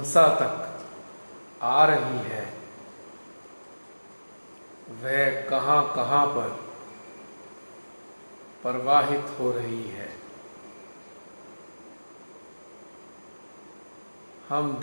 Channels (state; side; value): inverted; both; correlation -1.00